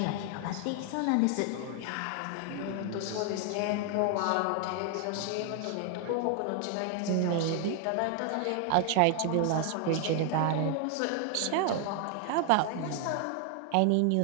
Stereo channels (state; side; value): different; both; correlation 0.00